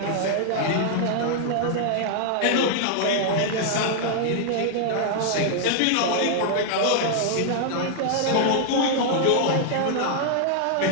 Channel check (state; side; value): different; both; correlation -0.01